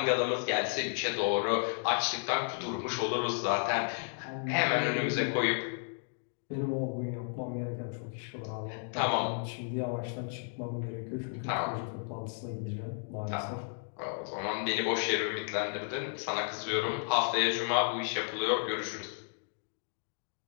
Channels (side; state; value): right; silent; 56 dB below the other